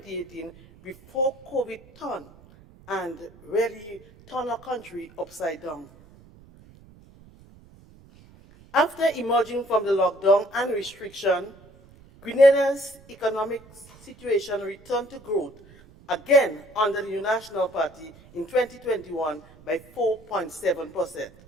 before COVID turned and really turned our country upside down. After emerging from the lockdown and restriction, Grenada's economic situation returned to growth again under the New National Party in 2021 by 4.7%.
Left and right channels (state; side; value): noise; right; rumble, 24 dB below the sound